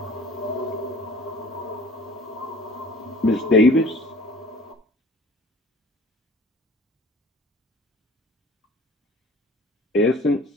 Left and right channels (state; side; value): normal; both; correlation 0.47